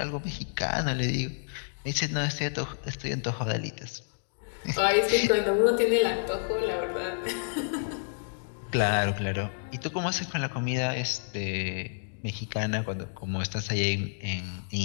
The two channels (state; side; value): silent; right; digital silence